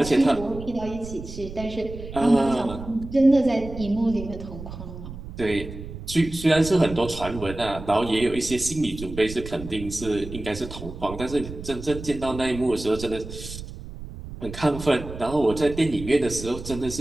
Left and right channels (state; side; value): noise; right; rumble, 11 dB below the sound